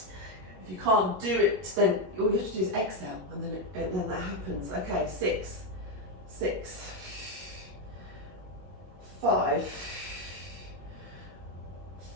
you can't do it, then all you have to do is exhale and then that happens. Okay, 6, 6, 5,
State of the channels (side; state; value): left; late; 21 ms